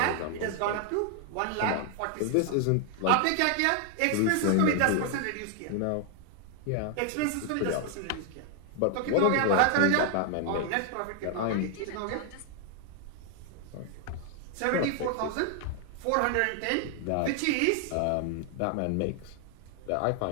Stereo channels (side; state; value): both; different; correlation 0.00